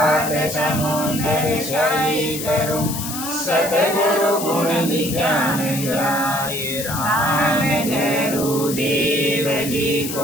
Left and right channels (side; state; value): left; noise; hiss, 7 dB below the sound